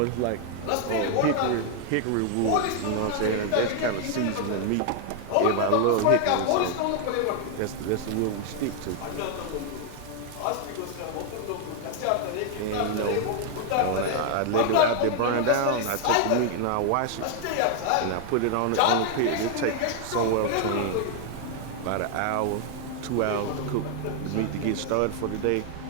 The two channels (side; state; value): both; different; correlation 0.00